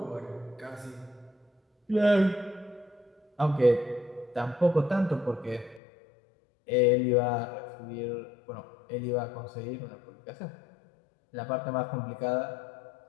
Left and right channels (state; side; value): drops out; right; at 5.8 s